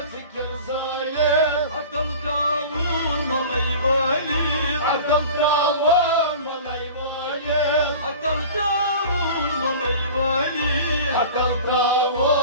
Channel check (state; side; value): inverted; both; correlation -0.39